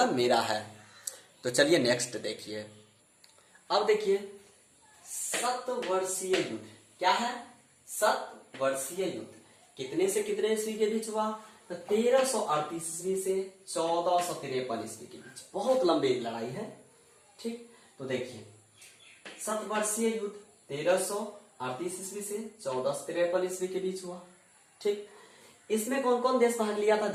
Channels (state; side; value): identical; both; correlation 1.00